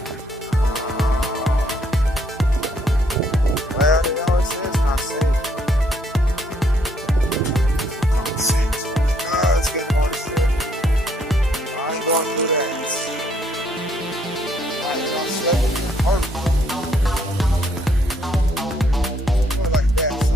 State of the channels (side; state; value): both; normal; correlation 0.70